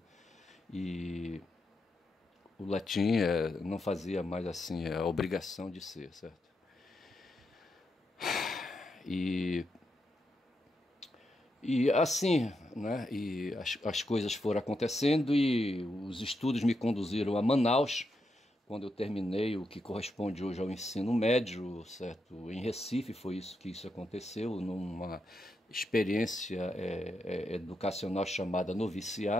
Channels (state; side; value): normal; both; correlation 0.84